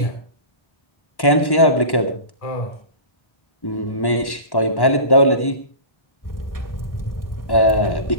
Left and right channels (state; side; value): late; right; 1.1 ms